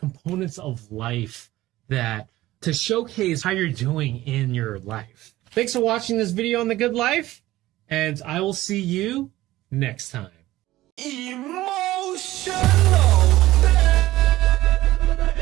of life that to showcase how you're doing in your life. Thanks for watching this video on the good life, and I will see you next time. Emotional.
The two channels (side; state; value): left; quieter; 16.4 dB